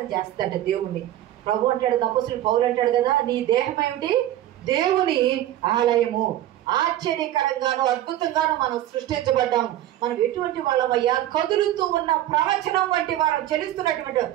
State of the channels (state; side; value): quieter; left; 13.3 dB